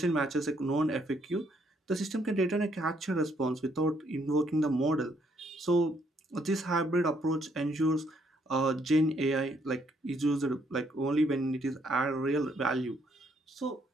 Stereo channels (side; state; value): both; normal; correlation 0.70